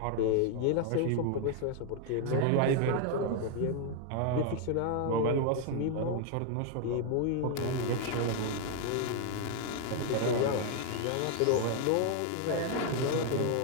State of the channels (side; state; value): both; different; correlation 0.01